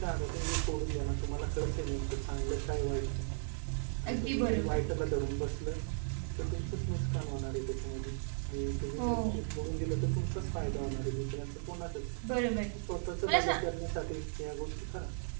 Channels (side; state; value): left; silent; digital silence